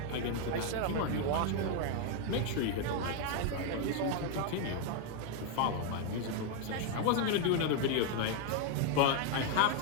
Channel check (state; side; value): different; both; correlation 0.01